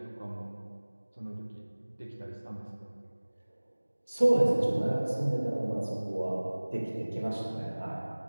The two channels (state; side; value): inverted; both; correlation -1.00